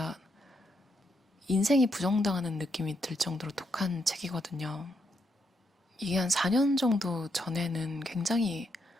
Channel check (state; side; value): normal; both; correlation 0.79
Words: 인생이 부정당하는 느낌이 들 정도로 독한 책이거든요. 이게 한 4년 정도 전에는 굉장히